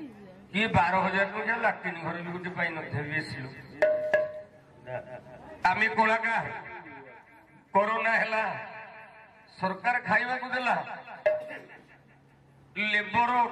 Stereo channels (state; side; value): identical; both; correlation 1.00